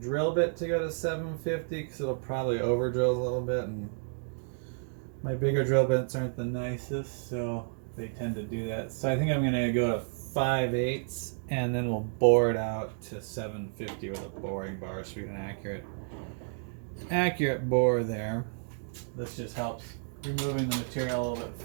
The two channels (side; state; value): left; silent; digital silence